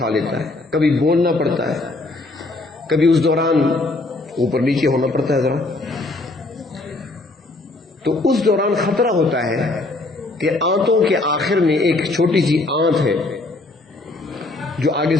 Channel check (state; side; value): quieter; right; 3.0 dB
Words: لیتا ہے. کبھی بولنا پڑتا ہے، کبھی اس دوران اوپر نیچے ہونا پڑتا ہے ذرا، تو اس دوران خطرہ ہوتا ہے کہ آنتوں کے آخر میں ایک چھوٹی سی آنت ہے جو آگے